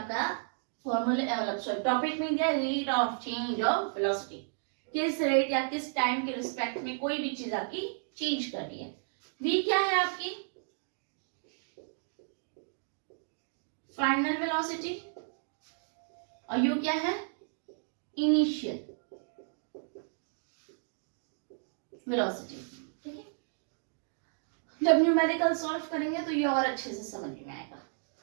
फॉर्मूला टॉपिक में दिया rate of change of velocity. किस रेट या किस टाइम के रिस्पेक्ट में कोई भी चीज आपकी चेंज कर रही है। वी क्या है आपकी? Final velocity. और यू क्या है? इनिशियल वेलोसिटी, ठीक है। जब न्यूमेरिकल सॉल्व करेंगे तो ये और अच्छे से समझ में आएगा,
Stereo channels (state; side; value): silent; left; digital silence